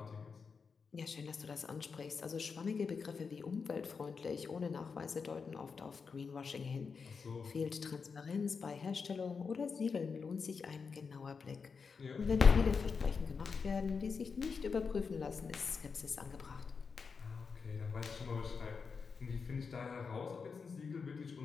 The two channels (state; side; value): quieter; right; 5.4 dB